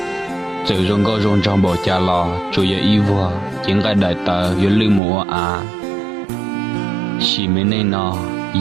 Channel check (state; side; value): drops out; left; at 5.0 s